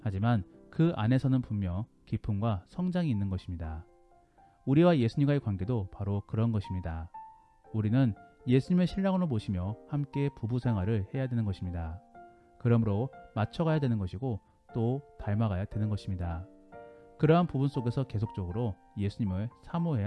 하지만 그 안에서는 분명 기쁨과 성장이 있는 것입니다. 우리와 예수님과의 관계도 바로 그런 것입니다. 우리는 예수님의 신랑으로 모시며 함께 부부 생활을 해야 되는 것입니다. 그러므로 맞춰가야 되는 것이고 또 닮아가야 되는 것입니다. 그러한 부분 속에서 계속적으로 예수님을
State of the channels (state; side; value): identical; both; correlation 1.00